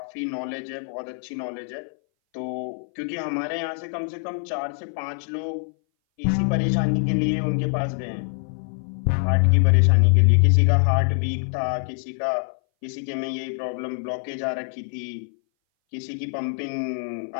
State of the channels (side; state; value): right; silent; 59 dB below the other